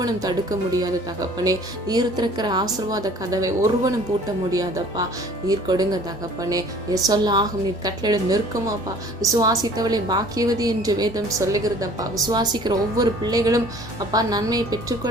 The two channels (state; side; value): normal; both; correlation 0.51